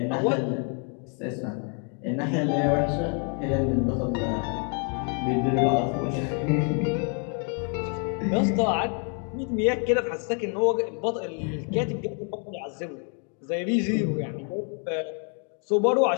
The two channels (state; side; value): quieter; right; 39.6 dB